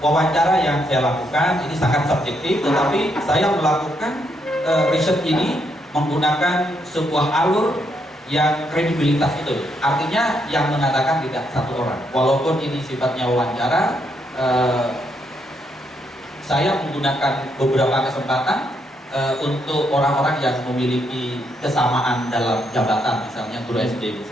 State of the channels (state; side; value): normal; both; correlation 0.76